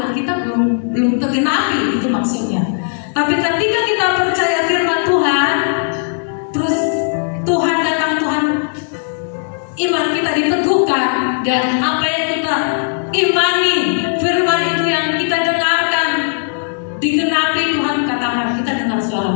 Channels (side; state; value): right; silent; digital silence